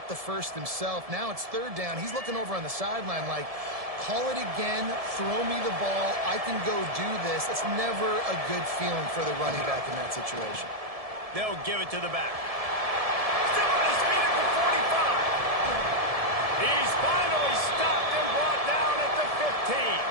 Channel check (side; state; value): left; late; 1.7 ms